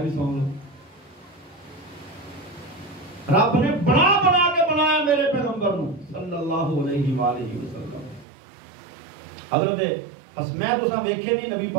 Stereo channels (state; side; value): drops out; left; at 8.2 s